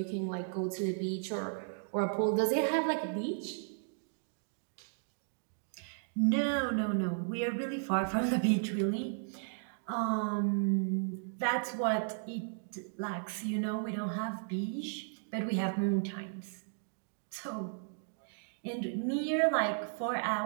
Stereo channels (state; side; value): silent; left; digital silence